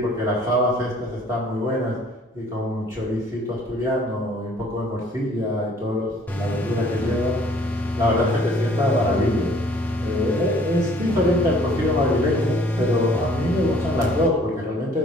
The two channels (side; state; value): both; normal; correlation 0.57